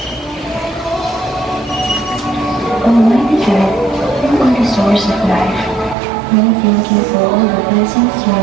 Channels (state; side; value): drops out; left; at 6.0 s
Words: Almighty God, you are the source of life. We thank you for all the blessings you